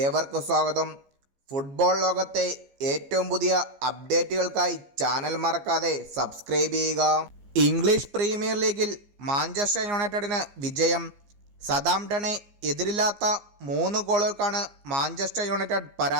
സ്വാഗതം. ഫുട്ബോൾ ലോകത്തെ ഏറ്റവും പുതിയ അപ്ഡേറ്റുകൾക്കായി ചാനൽ മറക്കാതെ സബ്സ്ക്രൈബ് ചെയ്യുക. ഇംഗ്ലീഷ് പ്രീമിയർ ലീഗിൽ മാഞ്ചസ്റ്റർ യുണൈറ്റഡിന് വിജയം. സതാംപ്ടനെ എതിരില്ലാത്ത 3 ഗോളുകൾക്കാണ് മാഞ്ചസ്റ്റർ യുണൈറ്റഡ്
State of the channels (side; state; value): left; late; 15 ms